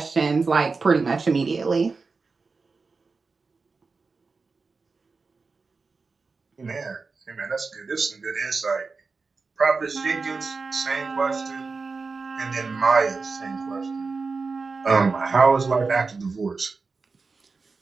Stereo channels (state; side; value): quieter; left; 4.3 dB